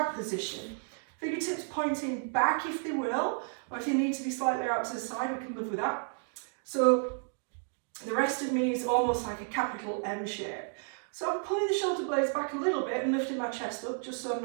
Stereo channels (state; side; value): silent; left; 56 dB below the other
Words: position. Fingertips pointing back if they will, or if you need to be slightly out to the side, we can live with that. So the rest of me is almost like a capital M shape. So I'm pulling the shoulder blades back a little bit and lifting my chest up just so I'm